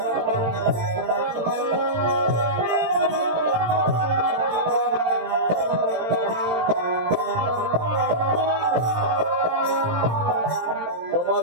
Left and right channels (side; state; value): left; late; 18 ms